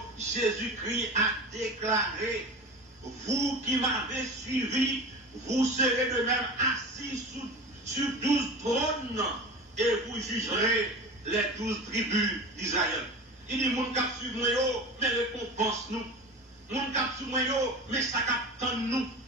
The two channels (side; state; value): both; normal; correlation 0.32